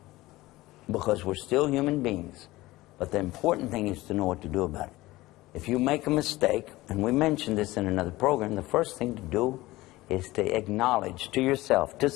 because we're still human beings. But the important thing is to know what to do about it. If you make a mistake, and we mentioned this in another program, the first thing to do is to acknowledge to yourself, to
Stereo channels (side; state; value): right; quieter; 18.7 dB